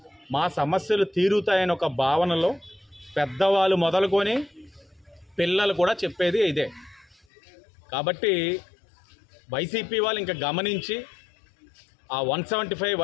మా సమస్యలు తీరుతాయని ఒక భావనలో పెద్దవాళ్ళు మొదలుకొని పిల్లలు కూడా చెప్పేది ఇదే. కాబట్టి వైసీపీ వాళ్ళు ఇంకా గమనించి ఆ 175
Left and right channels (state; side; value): drops out; right; at 7.2 s